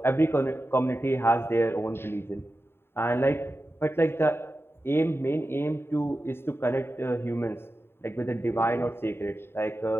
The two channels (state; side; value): late; right; 0.11 ms